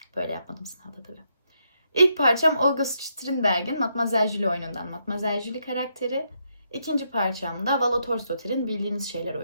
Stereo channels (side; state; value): both; inverted; correlation -0.78